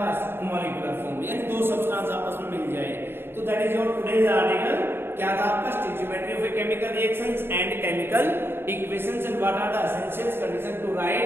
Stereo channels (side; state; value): left; late; 0.11 ms